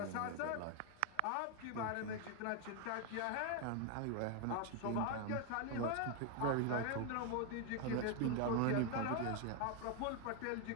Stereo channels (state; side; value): different; both; correlation 0.01